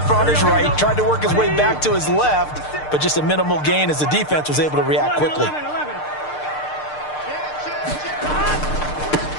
on his right, tried to work his way back to his left, but just a minimal gain as the defense was able to react quickly.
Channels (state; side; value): late; right; 6.6 ms